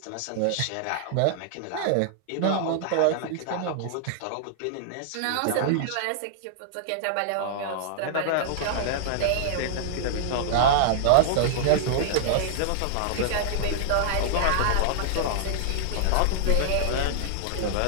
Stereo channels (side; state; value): both; different; correlation -0.01